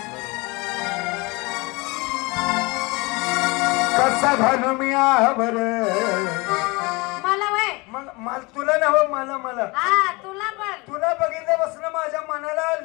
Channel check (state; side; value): quieter; right; 25.8 dB